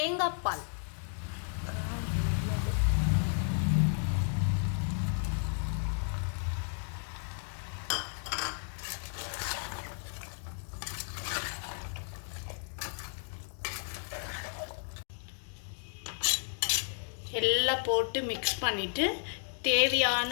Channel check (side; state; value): right; silent; 56 dB below the other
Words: பால் எல்லாம் போட்டு மிக்ஸ் பண்ணிவிட்டு தேவையான